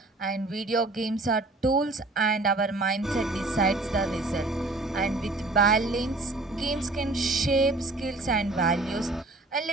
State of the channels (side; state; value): left; quieter; 3.0 dB